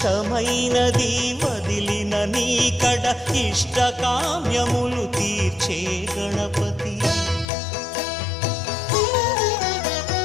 వదిలిన నీకడ ఇష్టకామ్యములు తీర్చే గణపతి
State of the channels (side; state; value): right; drops out; at 7.5 s